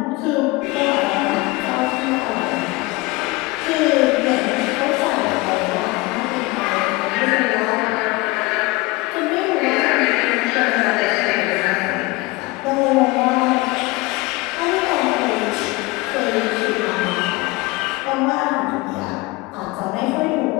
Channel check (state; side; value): quieter; right; 22.3 dB